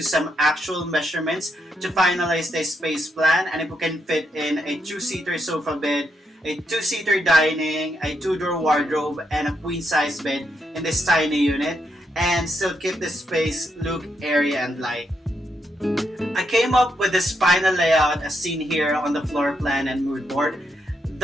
some actual measurements to finalize the space plan, and if we can fit in a 2-seater sofa bed, a 2-seater dining, a 2-door wardrobe, and a queen-size bed in this tiny unit, and still keep the space look airy and light. I came up with this final layout as seen here on the floor plan and mood board.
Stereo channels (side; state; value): both; normal; correlation 0.80